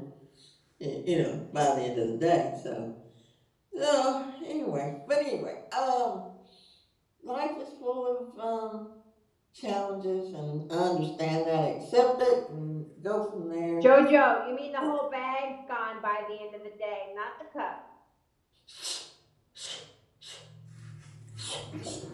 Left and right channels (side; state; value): both; identical; correlation 1.00